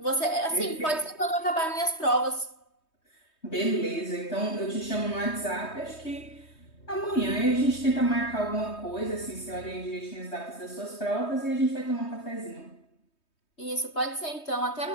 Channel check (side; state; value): right; late; 3.2 ms